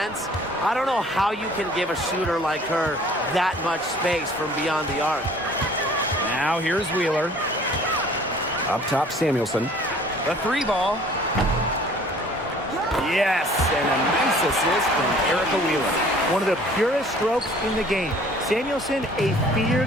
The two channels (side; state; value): both; normal; correlation 0.52